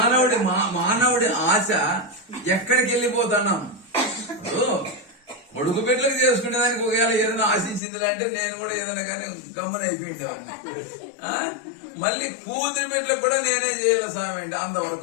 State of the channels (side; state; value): right; drops out; at 7.8 s